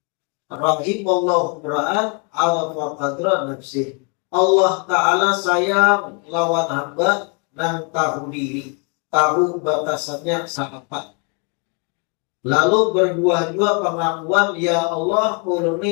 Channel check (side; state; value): right; quieter; 36.5 dB